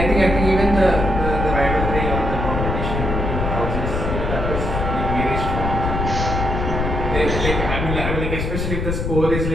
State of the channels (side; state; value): left; noise; rumble, 2 dB below the sound